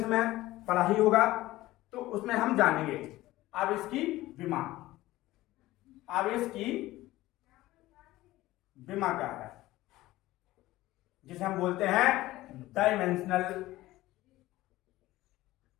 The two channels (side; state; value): right; quieter; 17.0 dB